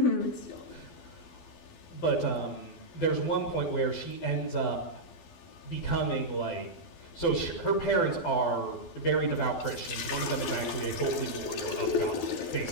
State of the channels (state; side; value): late; right; 12 ms